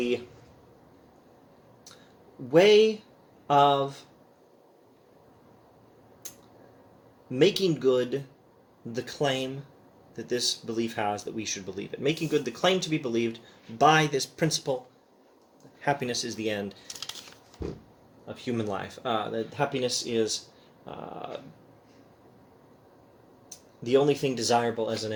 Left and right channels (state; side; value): identical; both; correlation 1.00